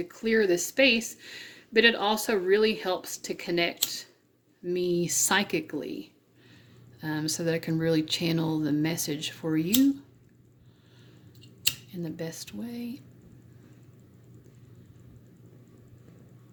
clear the space, but it also really helps to connect me psychically, so that I can really channel the message for you in the best way.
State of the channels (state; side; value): identical; both; correlation 1.00